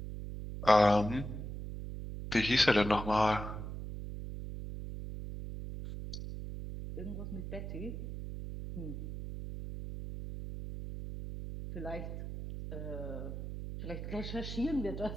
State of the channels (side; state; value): right; noise; hum, 7 dB below the sound